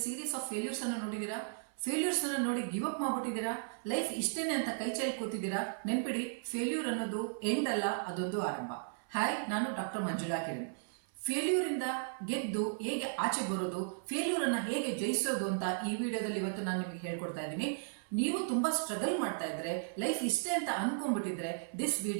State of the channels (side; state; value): left; silent; 54 dB below the other